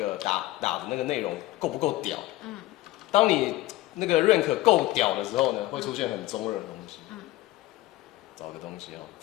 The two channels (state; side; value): quieter; right; 16.7 dB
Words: 打的那个内容够不够屌。当你那个 rank 够屌的时候呢，会出现很中二的东西。找个东西哦。